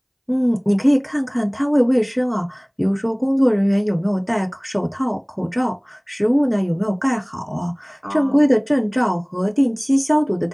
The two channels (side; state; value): both; identical; correlation 1.00